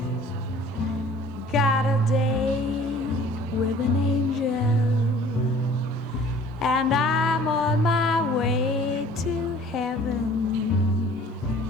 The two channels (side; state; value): both; normal; correlation 0.51